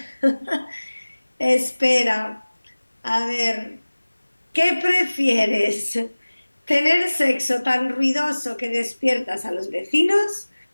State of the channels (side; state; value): both; inverted; correlation -1.00